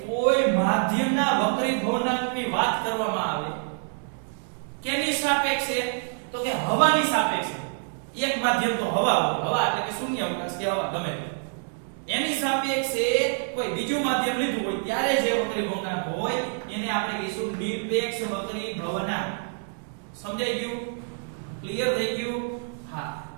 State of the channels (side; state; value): left; silent; digital silence